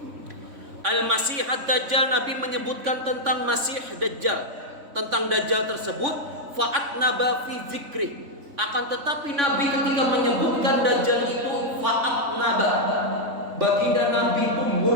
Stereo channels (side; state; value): left; late; 3.5 ms